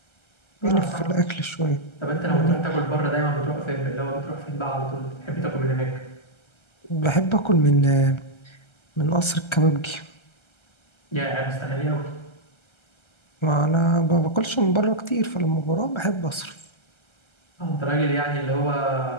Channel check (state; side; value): late; right; 1.3 ms